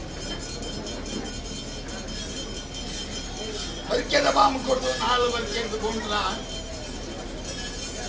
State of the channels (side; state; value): both; identical; correlation 1.00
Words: ಬರಿಕೆದ ಬಾಂಬು ಕೊಟ್ಟು 4 ಬರಿಕೆ ಎದ್ದುಕೊಂಡ್ರ